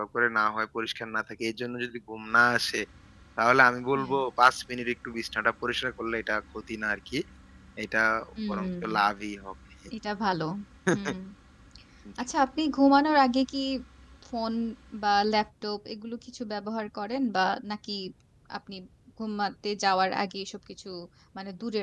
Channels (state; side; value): identical; both; correlation 1.00